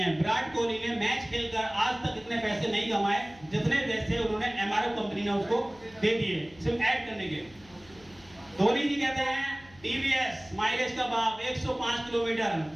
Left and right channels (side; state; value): left; noise; hum, 25 dB below the sound